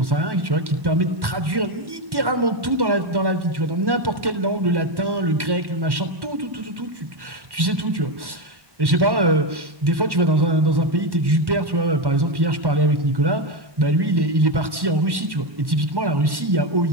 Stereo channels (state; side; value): late; left; 1.1 ms